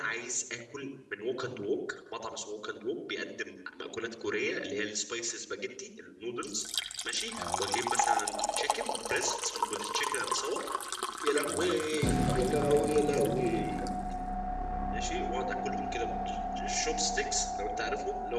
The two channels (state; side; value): identical; both; correlation 1.00